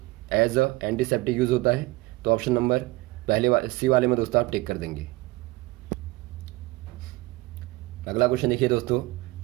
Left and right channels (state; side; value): quieter; left; 20.6 dB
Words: एज अ एंटीसेप्टिक यूज होता है। तो ऑप्शन नंबर पहले सी वाले में दोस्तों आप टिक कर देंगे। अगला क्वेश्चन देखिए दोस्तों,